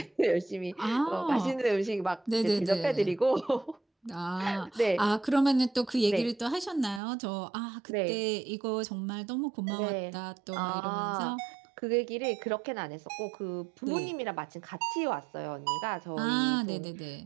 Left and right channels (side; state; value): left; drops out; at 7.0 s